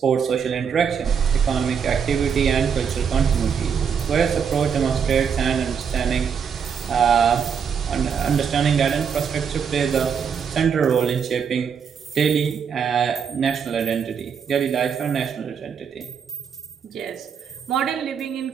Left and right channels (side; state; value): left; quieter; 7.0 dB